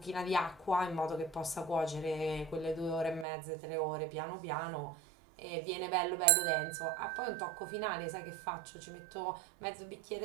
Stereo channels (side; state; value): left; drops out; at 3.2 s